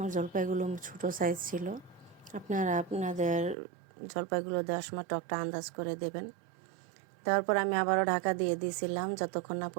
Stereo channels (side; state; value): left; drops out; at 3.6 s